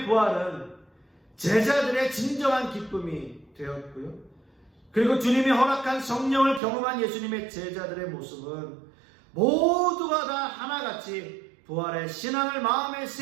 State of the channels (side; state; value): left; drops out; at 6.6 s